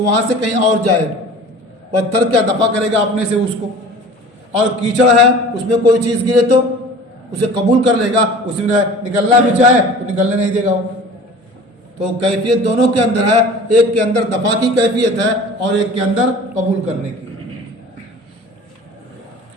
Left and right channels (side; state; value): both; normal; correlation 0.42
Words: وہاں سے کہیں اور جائے، پتھر کیا دفع کرے گا اپنے سے اس کو. اور کیچڑ ہے، اس میں کوئی چیز گرے تو اسے قبول کر لے گا، اس میں نکلنا بھی چاہے تو نکلنے نہیں دے گا وہ. تو کیفیت دونوں کے اندر ہے، ایک کے اندر دفع کی کیفیت ہے اور ایک کے اندر قبول کرنے کی.